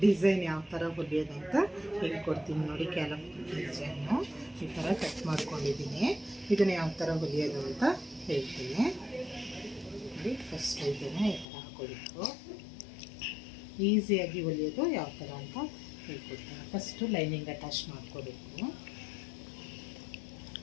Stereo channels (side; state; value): right; drops out; at 11.5 s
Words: ಡಿಸೈನ್ ಯಾವ ಥರ ಹೊಲಿಯೋದಂತ ಹೇಳ್ಕೊಡ್ತೀನಿ ನೋಡಿ. ಕ್ಯಾಲಪ್ ಡಿಸೈನು ಈ ಥರ ಕಟ್ ಮಾಡ್ಕೊಂಡಿದ್ದೀನಿ. ಇದನ್ನು ಯಾವ ಥರ ಹೊಲಿಯೋದು ಅಂತ ಹೇಳ್ತೀನಿ ನೋಡಿ. ಫಸ್ಟ್ ಇದನ್ನು ಈ ಥರ ಹಾಕೋಬೇಕು. ಈಸಿಯಾಗಿ ಹೊಲಿಯೋದು ಯಾವ ಥರ ಅಂತ ಹೇಳ್ಕೊಡ್ತೀನಿ. ಫಸ್ಟು ಲೈನಿಂಗ್ ಅಟ್ಯಾಚ್ ಮಾಡ್ಕೋಬೇಕು